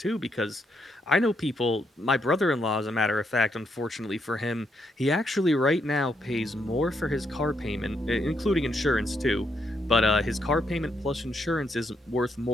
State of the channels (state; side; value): normal; both; correlation 0.77